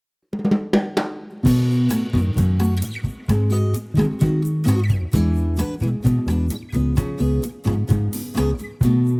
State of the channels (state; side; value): identical; both; correlation 1.00